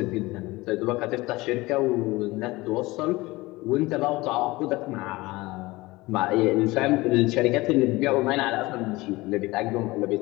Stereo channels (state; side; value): quieter; right; 20.9 dB